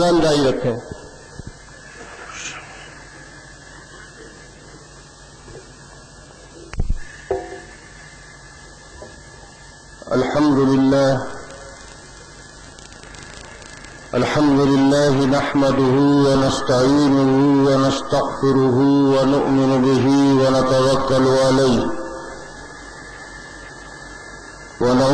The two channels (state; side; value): identical; both; correlation 1.00